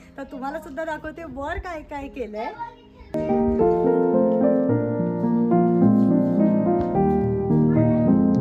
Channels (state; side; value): identical; both; correlation 1.00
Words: तर तुम्हाला सुद्धा दाखवते वर काय काय केलंय.